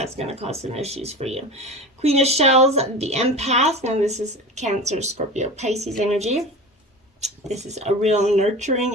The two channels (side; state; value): both; normal; correlation 0.33